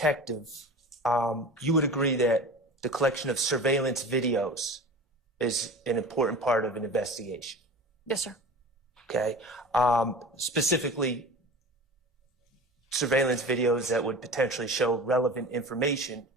you would agree that the collection of surveillance videos is an important part of an investigation. Yes, sir. Okay. Specifically, surveillance videos that would potentially show relevant information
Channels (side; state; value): both; normal; correlation 0.36